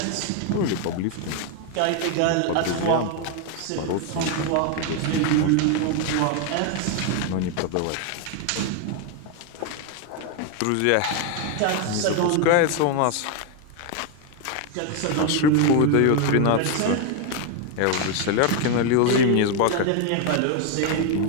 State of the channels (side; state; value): both; different; correlation 0.01